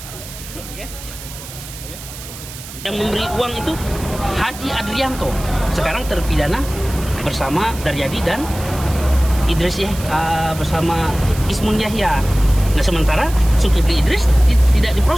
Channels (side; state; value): right; noise; hiss, 14 dB below the sound